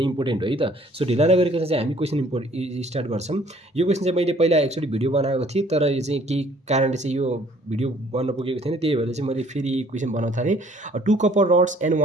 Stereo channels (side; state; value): both; normal; correlation 0.58